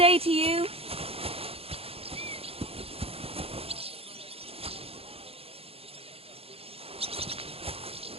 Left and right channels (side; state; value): left; late; 0.28 ms